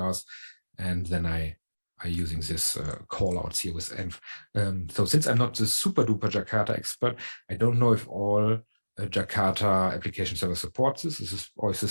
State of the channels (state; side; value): inverted; both; correlation -1.00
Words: and then I'm using this callouts here with env. So since I'm not the super duper Jakarta expert, I don't know if all Jakarta Application Server supports this? Or is